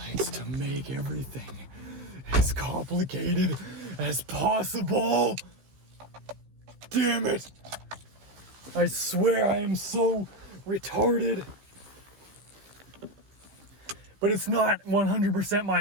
to make everything as complicated as possible. Damn it. I swear I am so retarded. But it's not 100%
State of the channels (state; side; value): late; left; 15 ms